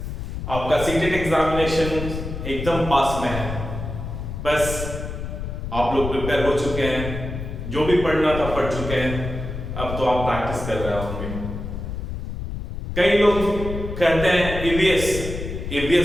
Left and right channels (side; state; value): left; noise; rumble, 6 dB below the sound